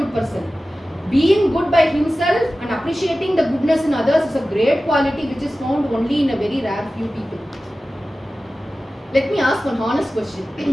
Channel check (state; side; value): normal; both; correlation 0.95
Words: person. Being good by himself and appreciating the goodness in others is a great quality which is found only in a very rare few people. Let me ask one honest